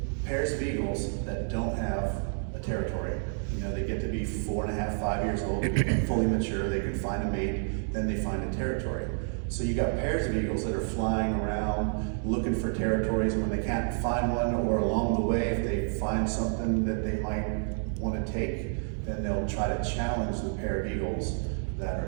pairs of eagles that don't have a territory. You know, they get to be 4.5, 5 years old, fully mature, they can find a mate, then they find a territory. So you got pairs of eagles that are flying around looking for territories, and when they can't find one, or along the way, if they find something that they might want to take, then they'll try to challenge the pair of eagles that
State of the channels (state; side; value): silent; left; 58 dB below the other